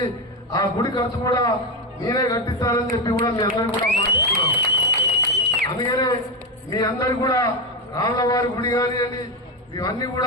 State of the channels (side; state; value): both; normal; correlation 0.11